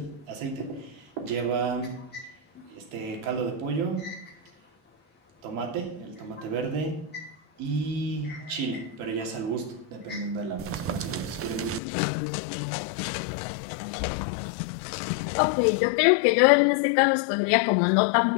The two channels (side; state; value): right; drops out; at 11.8 s